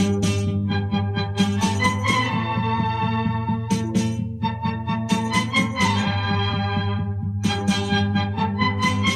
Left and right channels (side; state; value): both; identical; correlation 1.00